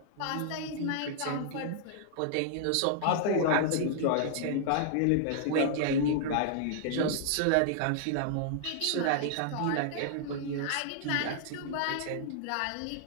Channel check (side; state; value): both; different; correlation -0.01